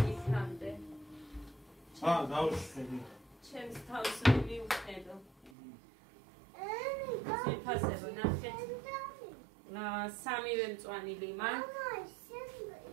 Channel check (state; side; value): drops out; left; at 5.5 s